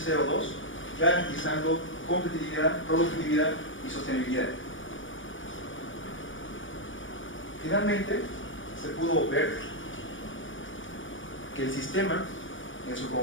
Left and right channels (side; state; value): right; late; 0.56 ms